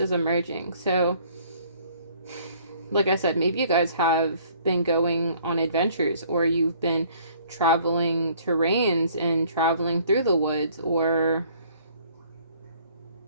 emerging? So, like I said, maybe you guys have been going on adventures, or you've been traveling terrains and traveling through the woods, or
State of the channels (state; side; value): inverted; both; correlation -0.58